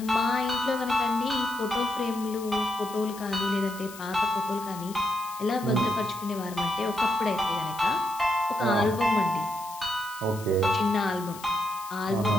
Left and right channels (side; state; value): left; noise; hiss, 16 dB below the sound